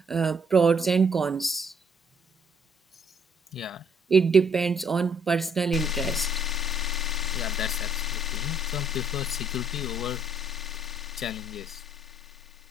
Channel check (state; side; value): normal; both; correlation 0.67